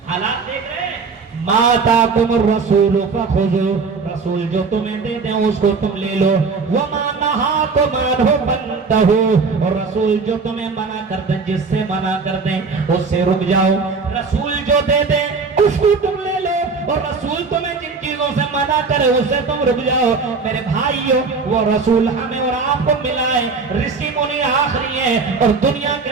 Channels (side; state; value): left; quieter; 4.6 dB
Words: حالات دیکھ رہے ہیں۔ ما آتاکم الرسول فخذوا، رسول جو تمہیں دے دیں اس کو تم لے لو، وما نہاکم عنہ فانتہوا، اور رسول جو تمہیں منع کر دیں، جس سے منع کر دیں اس سے رک جاؤ۔ رسول جو دے دیں اس کو تم لے لو، اور رسول تمہیں جن چیزوں سے منع کرے اس سے تم رک جاؤ۔ میرے بھائیوں وہ رسول ہمیں اور آپ کو ملا ہے، رشی منی آخری ہے، اور دنیا کے